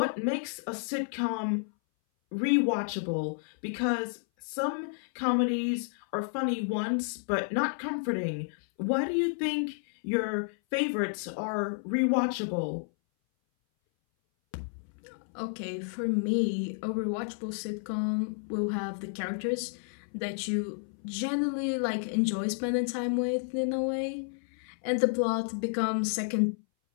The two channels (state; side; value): silent; right; 57 dB below the other